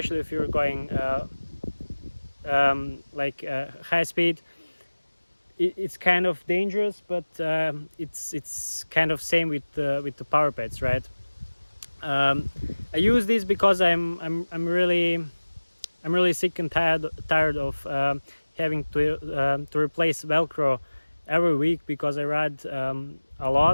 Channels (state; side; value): inverted; both; correlation -1.00